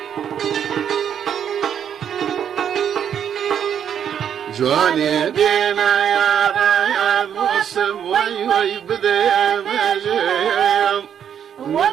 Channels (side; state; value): left; quieter; 8.7 dB